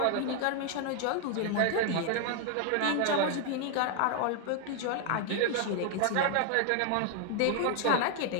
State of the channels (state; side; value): different; both; correlation 0.00